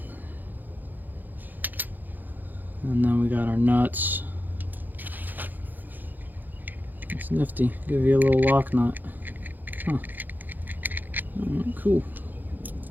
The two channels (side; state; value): left; late; 0.086 ms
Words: And then we got our nuts. It's nifty. Give you a little lock nut. Huh. Cool.